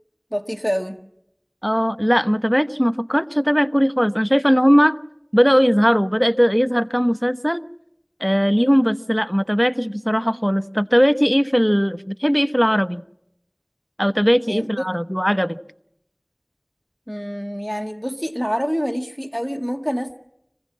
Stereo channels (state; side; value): identical; both; correlation 1.00